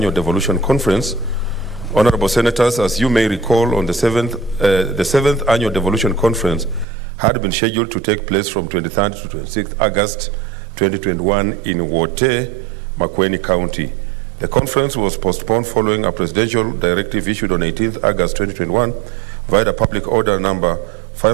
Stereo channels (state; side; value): drops out; left; at 6.9 s